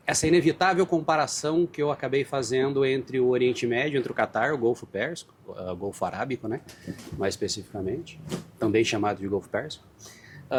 essa inevitável comparação que eu acabei fazendo entre o Oriente Médio, entre o Catar, o Golfo Pérsico, o Golfo Arábico, né, mais especificamente, também chamado de Golfo Pérsico,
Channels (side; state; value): both; identical; correlation 1.00